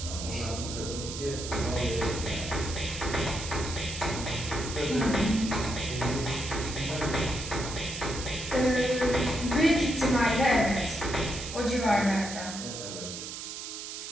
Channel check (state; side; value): noise; right; hiss, 8 dB below the sound